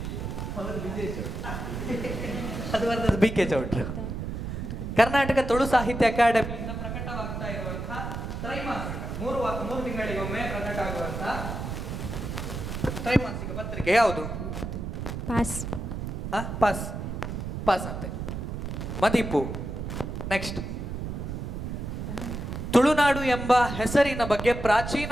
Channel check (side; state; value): right; noise; rumble, 5 dB below the sound